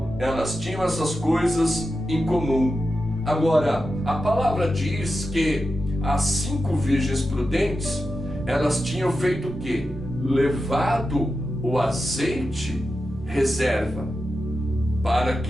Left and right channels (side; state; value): both; normal; correlation 0.90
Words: elas tinham essas coisas em comum. Agora, a palavra diz que as 5 virgens prudentes, elas tinham feito o quê? Levado o azeite reserva, para